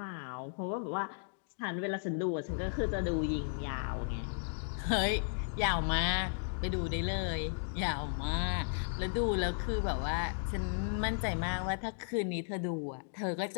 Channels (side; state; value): right; silent; digital silence